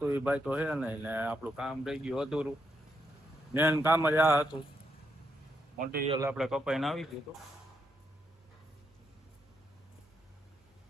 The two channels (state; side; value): normal; both; correlation 0.80